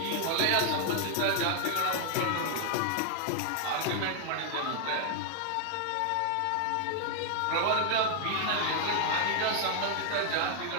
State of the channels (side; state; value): both; different; correlation 0.00